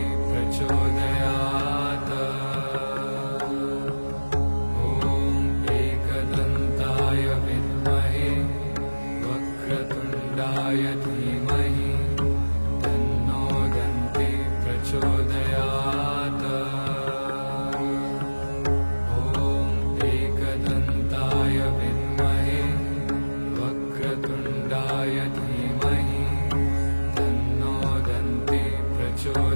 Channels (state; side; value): inverted; both; correlation -1.00